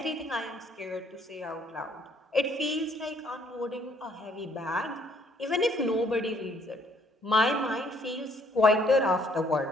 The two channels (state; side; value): normal; both; correlation 0.65